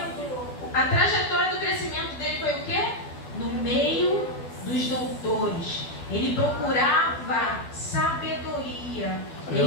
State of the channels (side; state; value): right; late; 12 ms